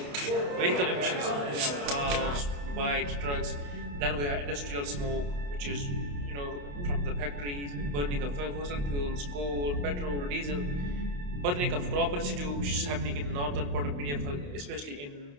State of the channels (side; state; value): left; late; 28 ms